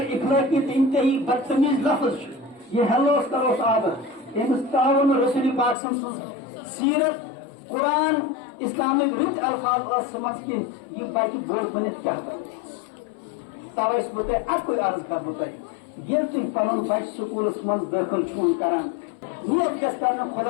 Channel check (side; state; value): right; drops out; at 5.8 s